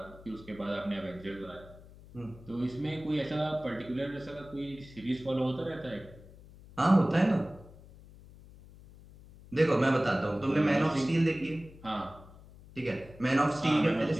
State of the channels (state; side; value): noise; left; hum, 20 dB below the sound